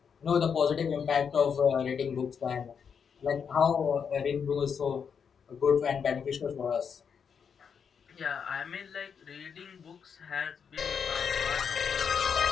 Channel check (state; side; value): quieter; right; 6.8 dB